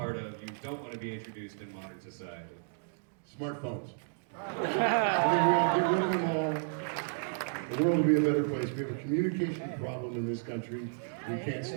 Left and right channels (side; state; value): left; silent; digital silence